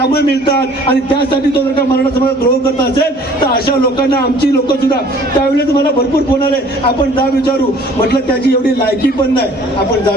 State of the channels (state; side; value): normal; both; correlation 0.53